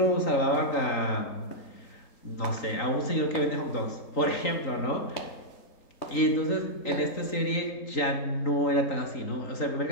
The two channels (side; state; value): right; late; 3.8 ms